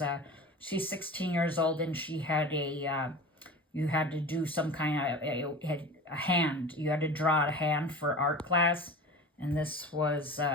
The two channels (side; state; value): both; normal; correlation 0.34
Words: she's 16 years old, and she had you had to do some kind of, a hand. You had to draw a hand for art class. And this was, is